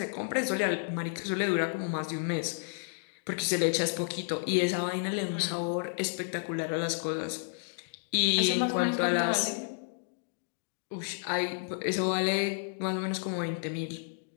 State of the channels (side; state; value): right; silent; digital silence